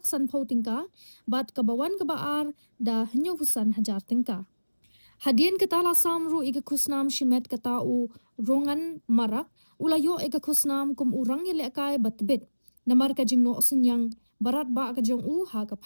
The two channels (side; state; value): both; inverted; correlation -1.00